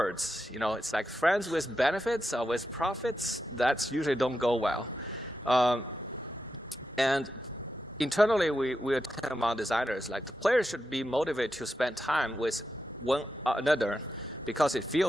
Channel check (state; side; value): normal; both; correlation 0.88